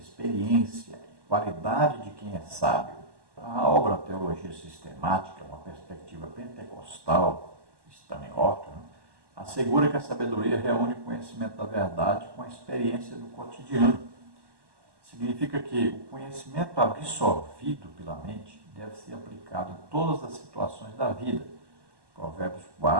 qualidade de quem é sábio. A obra Teologia Sistemática, uma perspectiva pentecostal, Stanley Horton, assegura que a sabedoria reúne o conhecimento da verdade com a experiência do cotidiano. Significa que o conhecimento absorvido pela mente deve ser aplicado em todas as situações da vida. Provérbios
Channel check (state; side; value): late; left; 1.1 ms